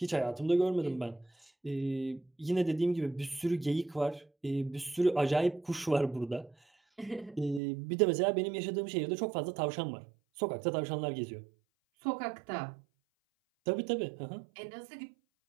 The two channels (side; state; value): left; drops out; at 7.6 s